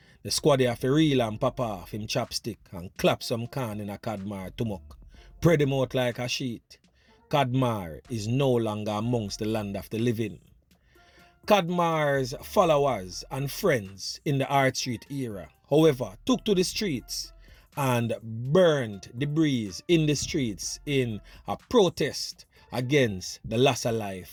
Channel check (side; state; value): both; identical; correlation 1.00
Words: The squaddy have to reel and pop off him chopstick and clap some can in a Kadmar tumok. Spread him out like a sheet. Kadmar is no longer amongst the land of the living. Kadmar's followers and friends in the Hart Street era, however, took to the streets and burned debris in the streets in a protest against the loss of